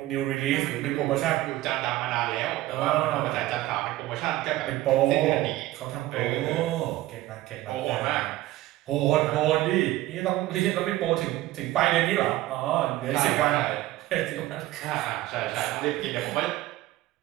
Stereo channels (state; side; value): quieter; left; 16.2 dB